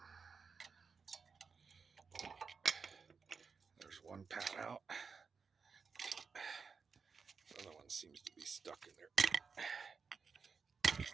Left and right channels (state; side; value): quieter; left; 5.4 dB